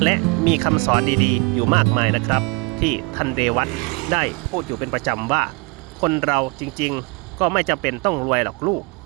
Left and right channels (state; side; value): quieter; left; 28.2 dB